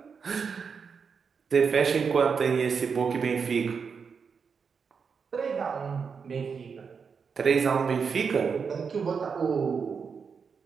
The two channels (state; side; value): quieter; left; 5.9 dB